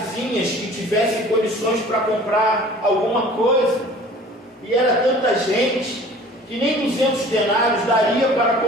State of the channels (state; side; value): normal; both; correlation 0.47